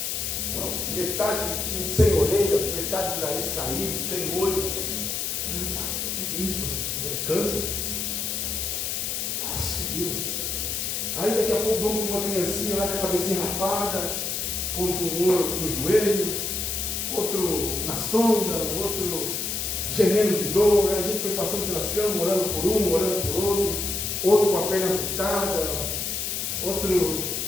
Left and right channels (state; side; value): noise; left; hiss, 2 dB below the sound